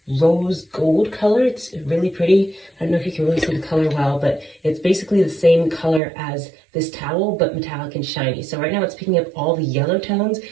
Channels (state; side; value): drops out; left; at 6.0 s